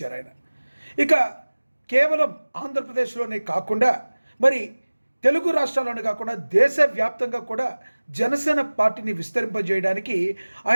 ఆయన. ఇక కేవలం ఆంధ్రప్రదేశ్లోనే కాకుండా మరి తెలుగు రాష్ట్రాల్లోనే కాకుండా దేశవ్యాప్తంగా కూడా జనసేన పార్టీని విస్తరింపజేయడానికి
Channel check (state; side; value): inverted; both; correlation -1.00